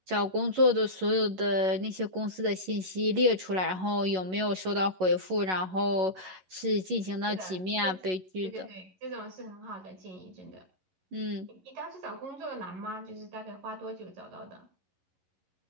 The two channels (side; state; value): left; late; 11 ms